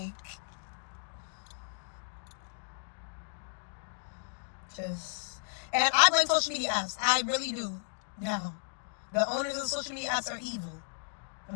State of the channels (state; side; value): silent; right; digital silence